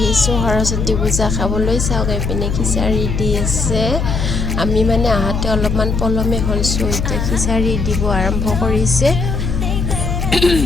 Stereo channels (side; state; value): left; noise; hum, 1 dB below the sound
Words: সৰস্বতী পূজা খাবলৈ। চাওক এইপিনে খিচাৰি দি আছে। আমি মানে আহোঁতে অলপমান পলমে হ'ল, চ' এতিয়া খিচাৰি দিব আৰম্ভ কৰিছে।